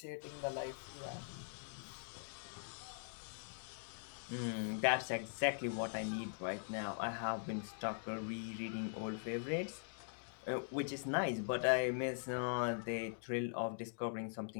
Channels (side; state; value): right; silent; digital silence